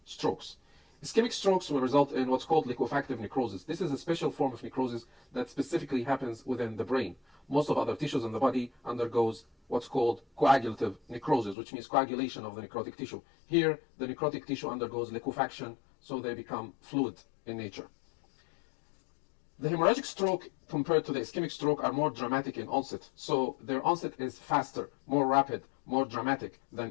strokes. Ischemic strokes will result in what's called liquefactive necrosis. This is a special form of necrosis that specifically happens within the brain. Most of other tissues in the body undergoes what's called coagulative necrosis, which means coagulation of the necrotic tissue. Here, the necrotic tissue undergoes liquefaction, so they become fluid in nature. The hemorrhagic stroke compared to the ischemic stroke are more dramatic in onset. So their onset is faster, more rapid, more dramatic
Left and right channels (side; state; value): right; drops out; at 11.6 s